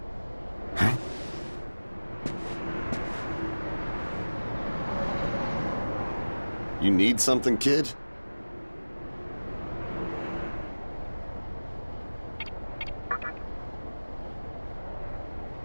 Huh? You need something, kid?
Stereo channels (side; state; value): both; inverted; correlation -1.00